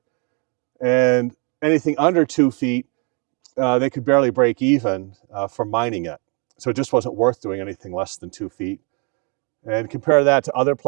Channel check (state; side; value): quieter; left; 35.3 dB